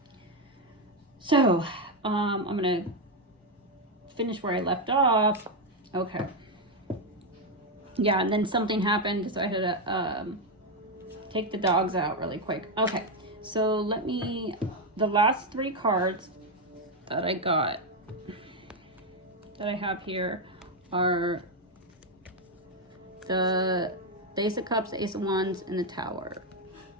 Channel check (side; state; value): both; normal; correlation 0.05